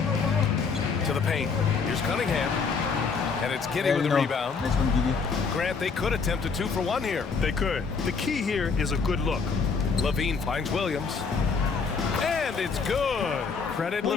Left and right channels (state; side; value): quieter; right; 5.2 dB